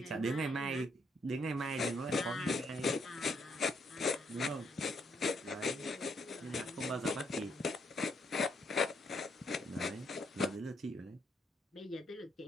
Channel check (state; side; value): normal; both; correlation 0.74